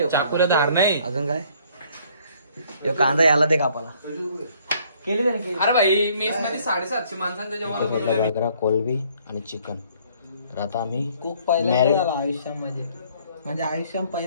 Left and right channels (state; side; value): inverted; both; correlation -0.61